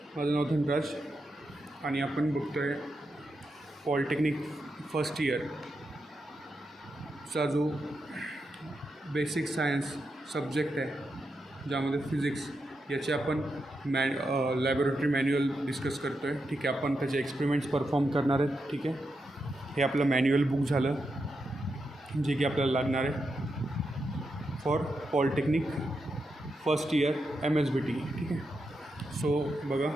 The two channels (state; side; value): normal; both; correlation 0.86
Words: माझं नाव धनराज आणि आपण बघतो आहे पॉलिटेक्निक फर्स्ट इयरचा जो बेसिक सायन्स सब्जेक्ट आहे ज्यामध्ये फिजिक्स याचे आपण लॅबोरेटरी मॅन्युअल डिस्कस करतो आहे. ठीक आहे, आपण त्याचे एक्सपेरिमेंट्स परफॉर्म करणार आहेत. ठीक आहे, हे आपलं मॅन्युअल बुक झालं जे की आपल्याला लागणार आहे for polytechnic first year MSBT. ठीक आहे, सो बघा